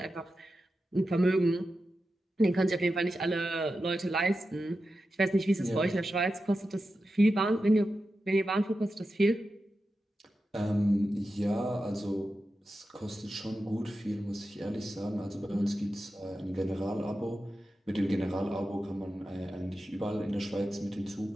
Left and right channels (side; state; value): both; normal; correlation 0.91